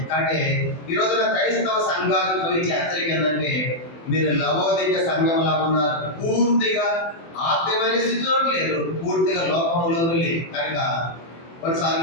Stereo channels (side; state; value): right; late; 24 ms